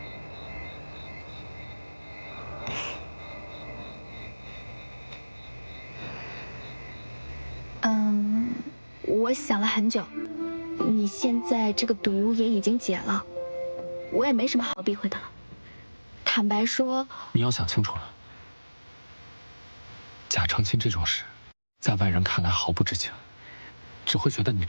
我想了很久，你现在这个毒也已经解了，我也没什么好避讳的了。坦白说，你要想清楚了，假成亲这种事，在外人看来毫不知情，只会觉得你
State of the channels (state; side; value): inverted; both; correlation -1.00